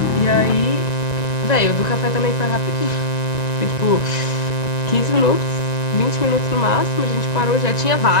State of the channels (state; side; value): late; right; 1.9 ms